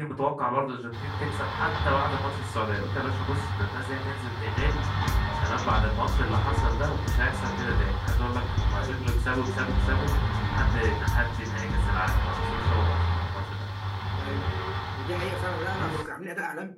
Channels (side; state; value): both; identical; correlation 1.00